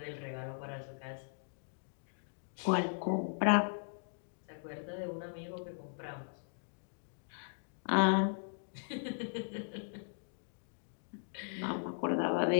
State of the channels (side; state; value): right; silent; digital silence